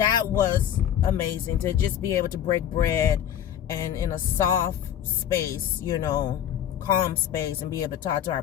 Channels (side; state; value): right; quieter; 10.1 dB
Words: was amazing to just be able to break bread and in a soft space, you know, calm space, and be able to talk to our